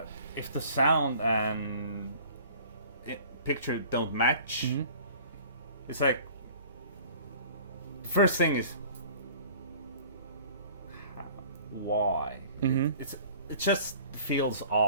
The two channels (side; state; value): both; inverted; correlation -0.48